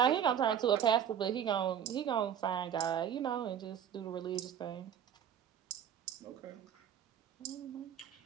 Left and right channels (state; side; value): quieter; left; 9.2 dB